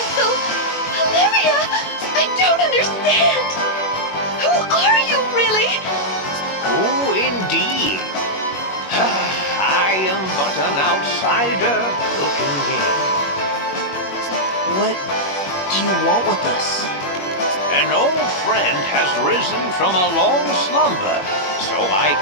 Olivia, I don't understand. Who are you, really? Who indeed? I am but an outsider looking in. What do you want with us? An old friend has risen from a long slumber, so I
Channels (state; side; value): late; right; 21 ms